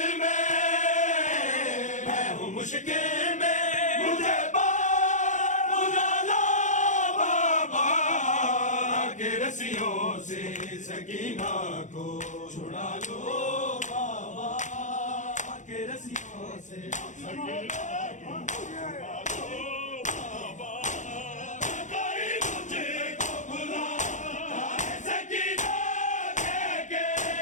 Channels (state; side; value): late; right; 0.35 ms